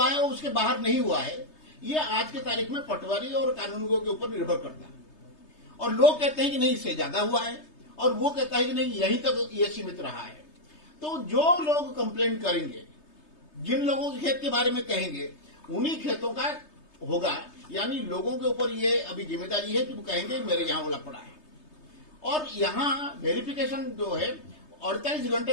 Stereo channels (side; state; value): right; late; 3.3 ms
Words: है और उसके बाहर नहीं हुआ है, ये आज के तारीख में पटवारी और कानूनगों के ऊपर निर्भर करता है। और लोग कहते हैं कि नहीं, इससे ज्यादा हुआ है, और वो कहता है कि नहीं, यहीं तक ये सीमित रहा है। तो जो लोग कंप्लेंट करेंगे, जिन लोगों के खेत के बारे में कहेंगे, उन्हीं खेतों का होगा। यानी लोगों के ऊपर ये अभी जिम्मेदारी है कि वो कहेंगे मेरे यहाँ ओला पड़ा है। और यहाँ वेरिफिकेशन जो है 48